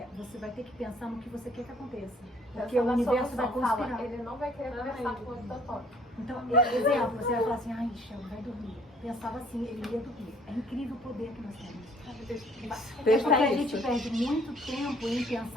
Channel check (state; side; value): normal; both; correlation 0.58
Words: você vai ter que pensar no que você quer que aconteça. Porque o universo vai conspirar. Fala, ele não vai querer conversar com o Totó. Então, exemplo, você vai falar assim, ai, Shelby, vai dormir. Pensava assim, ele ia dormir. É incrível o poder que nós temos. É porque a gente perde muito tempo em